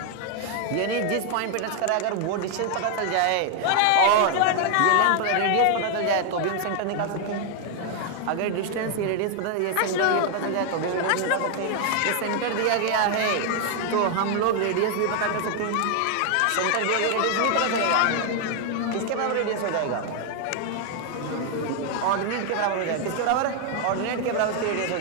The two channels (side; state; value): both; different; correlation 0.00